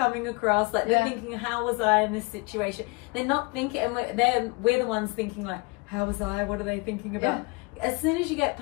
across. Like, they're thinking, how was I in this situation? They're not thinking, and we're the ones thinking like, how was I? What are they thinking about? As soon as you get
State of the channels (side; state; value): right; quieter; 27.6 dB